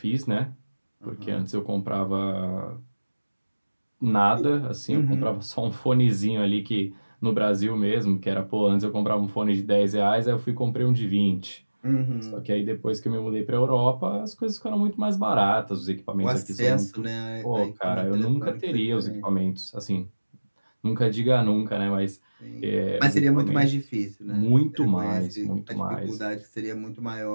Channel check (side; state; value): both; inverted; correlation -1.00